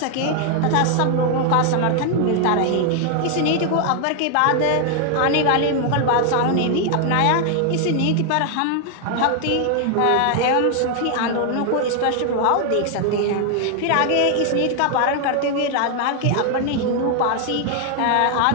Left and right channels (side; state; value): both; different; correlation 0.00